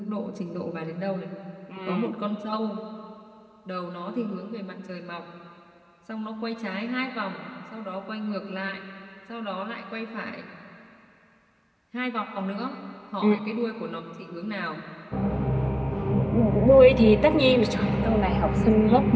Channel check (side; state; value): both; identical; correlation 1.00